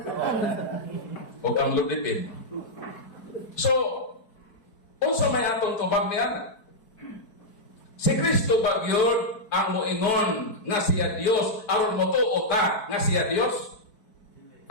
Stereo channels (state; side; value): late; right; 4.6 ms